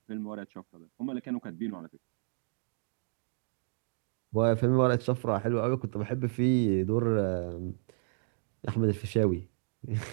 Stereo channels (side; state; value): left; silent; digital silence